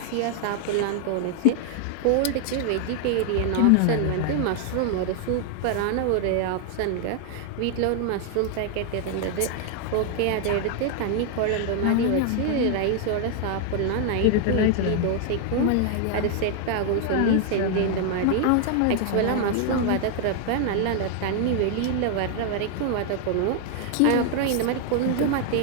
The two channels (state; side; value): different; both; correlation 0.00